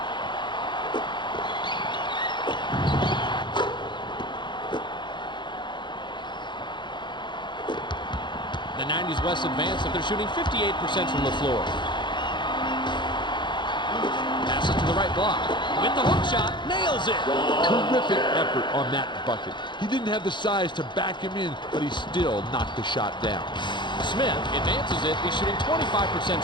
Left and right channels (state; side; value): late; right; 0.22 ms